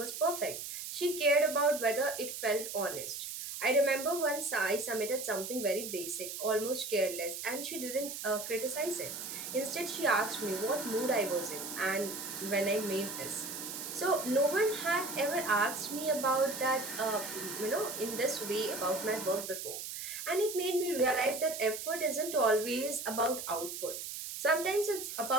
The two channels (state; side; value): noise; right; hiss, 7 dB below the sound